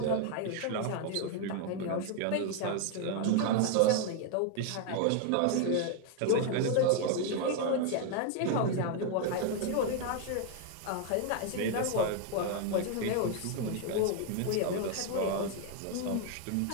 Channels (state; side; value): different; both; correlation 0.01